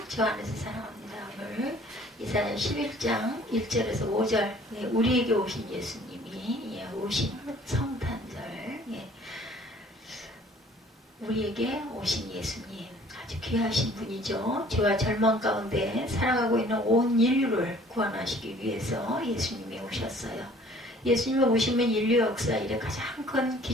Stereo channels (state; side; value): normal; both; correlation 0.54